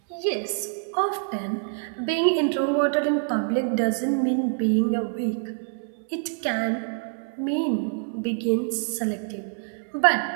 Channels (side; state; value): left; silent; 61 dB below the other